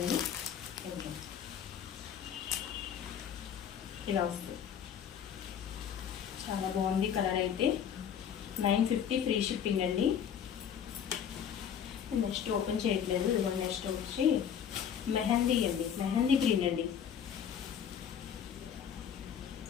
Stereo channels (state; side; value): quieter; right; 8.4 dB